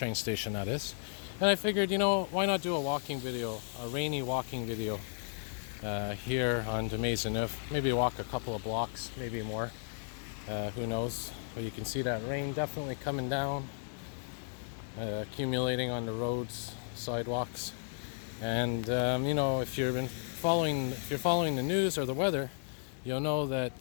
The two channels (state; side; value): silent; right; digital silence